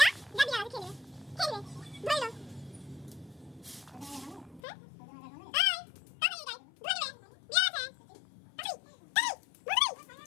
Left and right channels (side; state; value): right; drops out; at 4.6 s